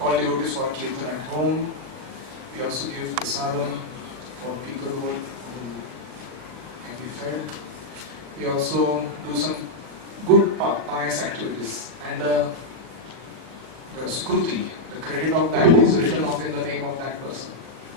devotees for Kirtan at home. We also give prasadam for people who can be fed. We also do some good pious activities. And the skruti, the credit of that is written off in the name of that person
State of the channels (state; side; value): late; left; 39 ms